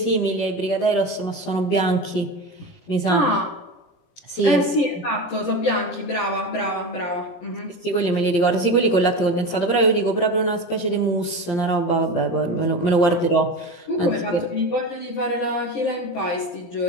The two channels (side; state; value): right; late; 17 ms